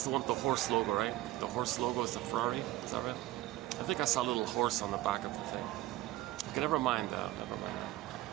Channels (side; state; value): left; quieter; 16.5 dB